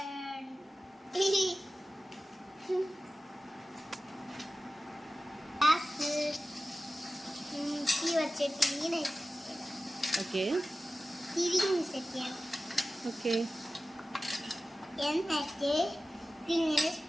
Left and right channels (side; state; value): both; normal; correlation 0.95